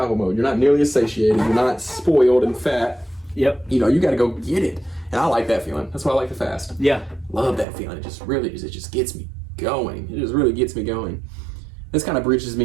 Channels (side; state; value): left; drops out; at 7.7 s